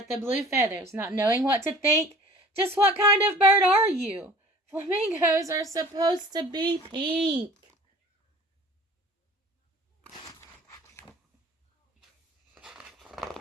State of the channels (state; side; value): normal; both; correlation 0.47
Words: the blue feathers, not knowing what to think. Just what kind of bird are you? Flamingos are supposed to be pink.